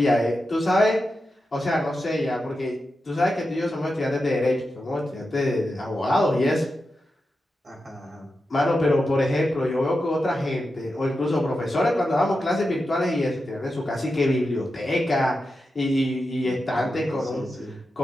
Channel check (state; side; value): normal; both; correlation 0.90